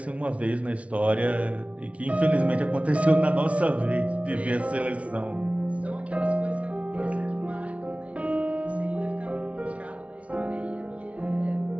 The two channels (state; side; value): late; left; 0.064 ms